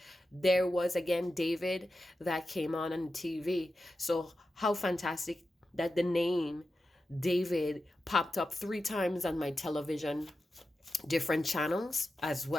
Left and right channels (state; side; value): normal; both; correlation 0.91